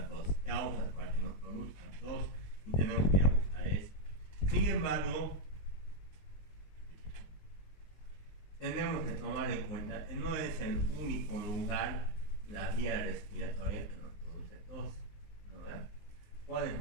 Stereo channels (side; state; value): right; late; 19 ms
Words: tos, causas para que nos produzcan tos, y tenemos que ir a buscar eso. Sin embargo, tenemos que tomar en cuenta que no es el único lugar, la vía respiratoria que nos produce tos, ¿no? ¿Verdad? ¿Cuál es